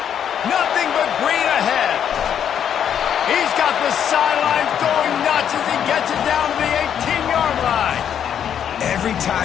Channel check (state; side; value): quieter; right; 8.9 dB